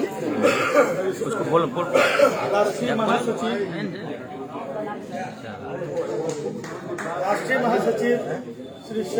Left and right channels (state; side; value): identical; both; correlation 1.00